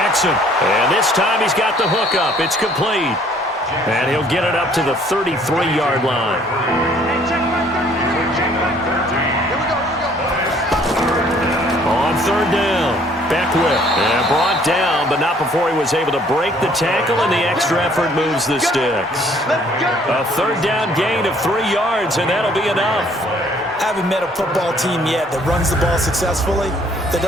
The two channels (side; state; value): both; normal; correlation 0.60